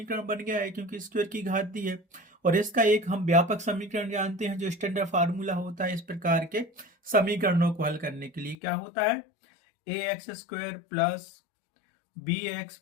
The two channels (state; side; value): drops out; right; at 8.6 s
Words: बन गया है क्योंकि स्क्वायर की घात दी है, और इसका एक हम व्यापक समीकरण जानते हैं जो स्टैंडर्ड फार्मूला होता है इस प्रकार के समीकरणों को हल करने के लिए। क्या होता है, ax² plus bx